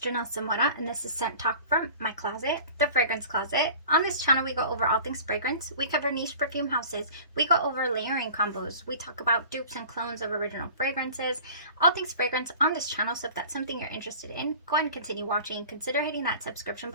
Samora and this is Scent Talk from my closet, the fragrance closet. On this channel we go over all things fragrance, we cover niche perfume houses, we go over layering combos, we talk about dupes and clones of original fragrances, all things fragrance on this channel. So if that's something you're interested in, go ahead and continue watching. Consider hitting that subscription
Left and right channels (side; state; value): both; inverted; correlation -0.42